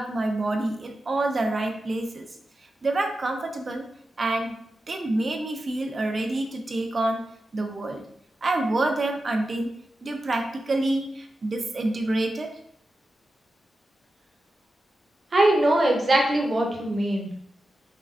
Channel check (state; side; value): normal; both; correlation 0.92